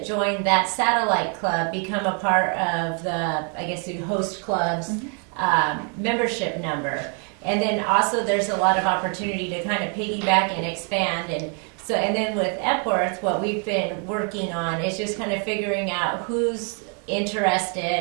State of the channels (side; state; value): left; quieter; 39.9 dB